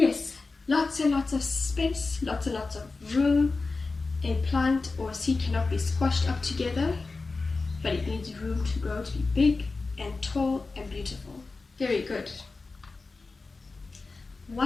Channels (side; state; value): right; quieter; 3.8 dB